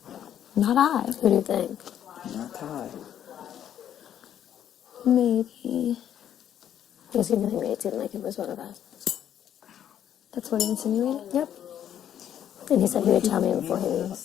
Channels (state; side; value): quieter; right; 10.1 dB